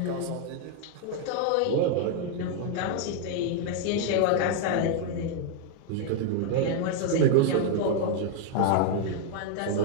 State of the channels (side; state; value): both; different; correlation 0.00